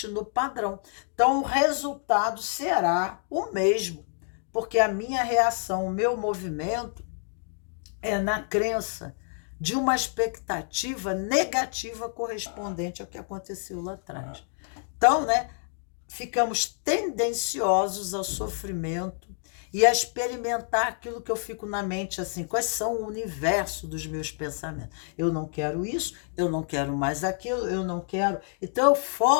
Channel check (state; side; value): silent; right; 59 dB below the other